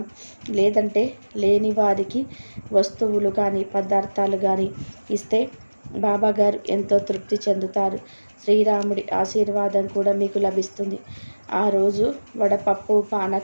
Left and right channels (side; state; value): both; inverted; correlation -1.00